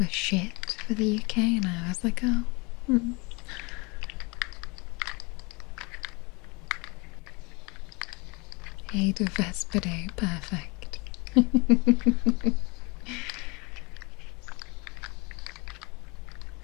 shit for the UK, and I was like, oh. Aid of Vespidae, perfect.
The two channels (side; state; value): right; quieter; 28.0 dB